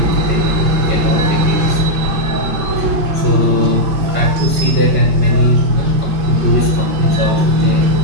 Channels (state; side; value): late; left; 5.2 ms